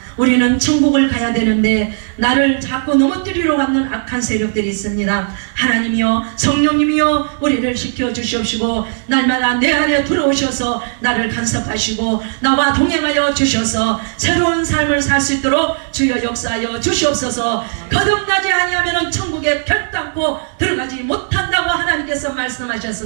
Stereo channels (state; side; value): silent; left; digital silence